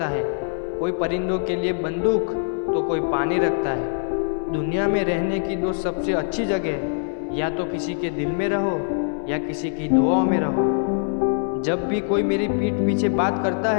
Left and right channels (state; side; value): silent; right; 62 dB below the other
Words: है। कोई परिंदों के लिए बंदूक तो कोई पानी रखता है। दुनिया में रहने की दो सबसे अच्छी जगह, या तो किसी के दिल में रहो या किसी की दुआओं में रहो। जब भी कोई मेरी पीठ पीछे बात करता